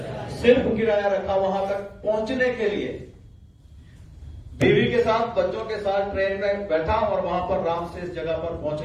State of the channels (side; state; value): both; identical; correlation 1.00